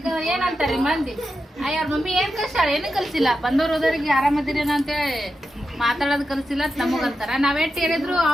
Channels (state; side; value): normal; both; correlation 0.88